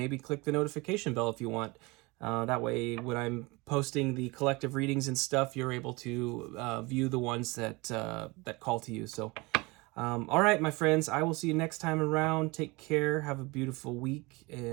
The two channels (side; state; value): left; quieter; 24.9 dB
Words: click the notification bell if you want. That way, when I'm posting the collective readings and stuff, you're able to view the ones that that call to you. So, all right, my friends, I will see you next time around. Take care. Have a beautiful week,